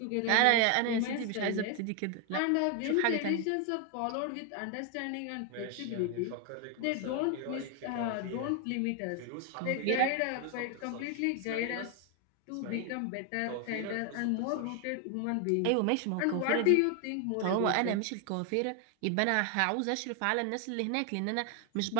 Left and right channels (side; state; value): both; different; correlation 0.01